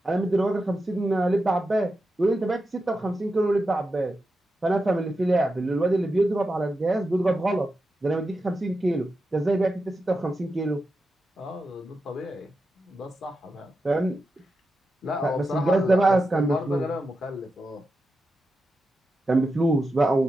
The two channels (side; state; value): both; normal; correlation 0.89